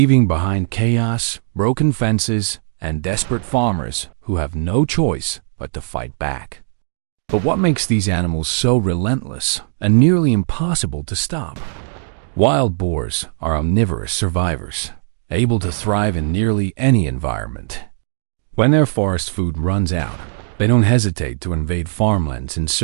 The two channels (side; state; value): left; silent; digital silence